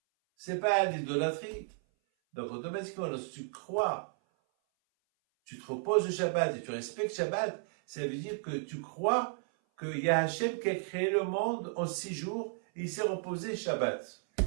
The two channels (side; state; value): left; silent; 55 dB below the other